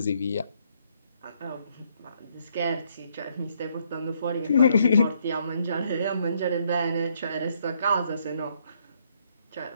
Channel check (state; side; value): inverted; both; correlation -0.71